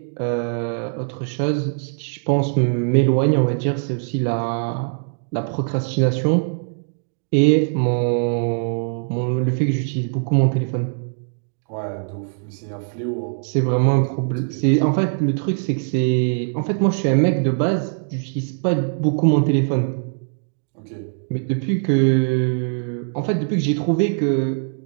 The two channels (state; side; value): silent; left; 65 dB below the other